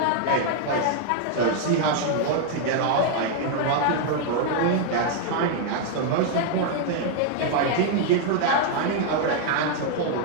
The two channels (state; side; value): different; both; correlation 0.00